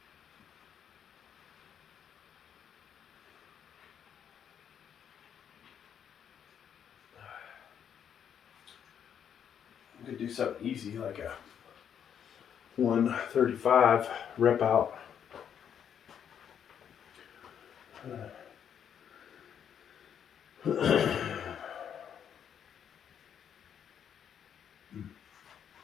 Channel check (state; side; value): quieter; right; 8.5 dB